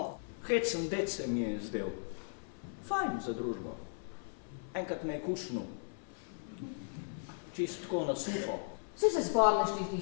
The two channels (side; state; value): right; silent; 53 dB below the other